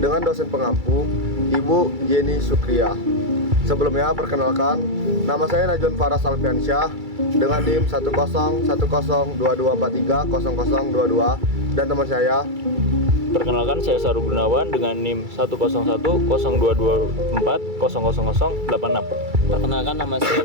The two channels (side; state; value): left; late; 2.3 ms